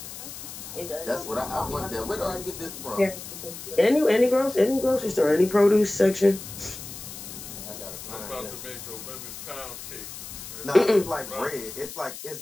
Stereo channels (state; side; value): noise; left; hiss, 11 dB below the sound